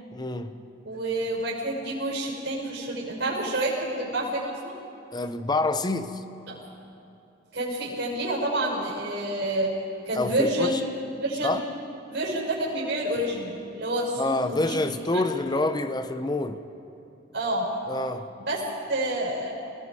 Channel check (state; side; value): normal; both; correlation 0.17